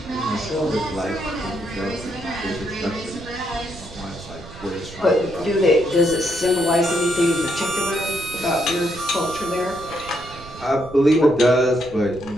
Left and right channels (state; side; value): noise; right; rumble, 17 dB below the sound